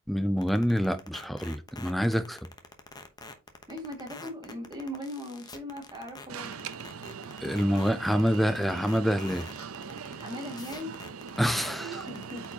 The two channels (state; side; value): normal; both; correlation 0.90